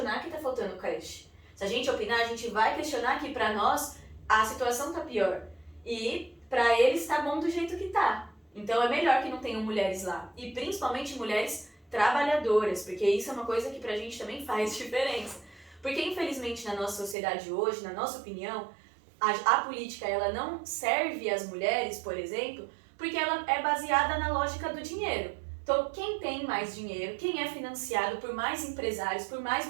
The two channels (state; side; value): drops out; left; at 17.2 s